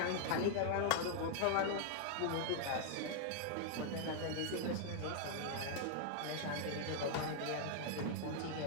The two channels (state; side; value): different; both; correlation -0.01